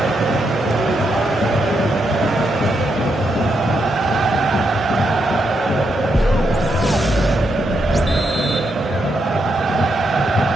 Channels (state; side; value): normal; both; correlation 0.80